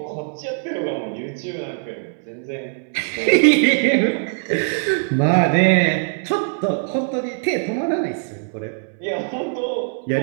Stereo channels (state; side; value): silent; left; 65 dB below the other